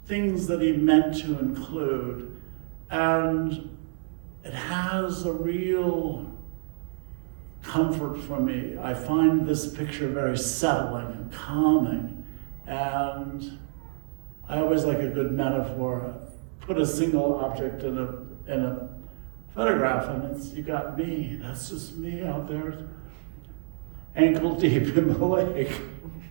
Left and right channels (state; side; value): silent; left; digital silence